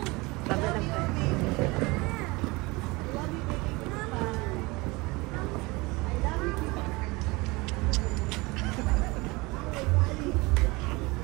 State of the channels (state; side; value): quieter; left; 24.1 dB